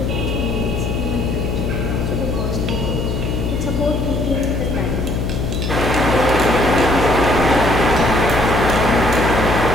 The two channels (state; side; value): noise; left; hum, 1 dB below the sound